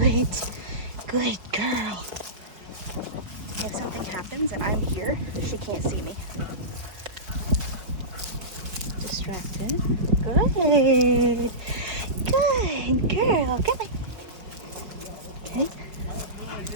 Good girl. If something happens and I'm here, she can't see me. Distracting. Good. Good girl. Come on. Okay.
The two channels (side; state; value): left; late; 4.8 ms